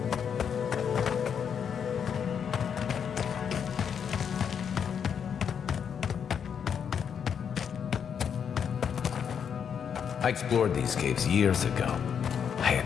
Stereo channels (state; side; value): quieter; right; 7.5 dB